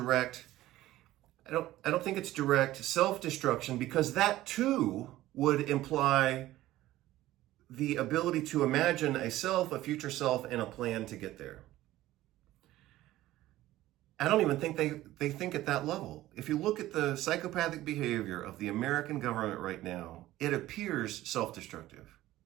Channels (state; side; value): quieter; left; 15.6 dB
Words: I don't think it's direct self-destruction, because that too would imply the ability to imagine a self, a future self, and a plan to get there. I don't even think they think at that level. If you look at the psychopathic behavior of the American government right now, it appears self-destructive.